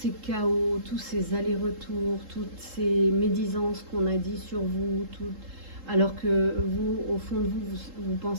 chaos, tous ces allers-retours, toutes ces médisances qu'on a dit sur vous, alors que vous, au fond de vous, vous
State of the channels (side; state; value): left; late; 3.8 ms